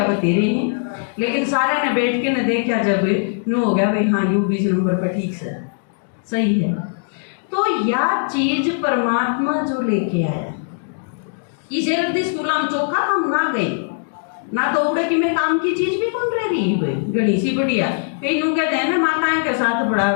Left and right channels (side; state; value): right; silent; digital silence